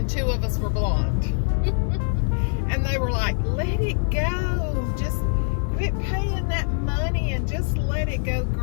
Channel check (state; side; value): silent; right; digital silence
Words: 2 of us were blonde. And they were like, let it go. Just quit paying that money and just let it go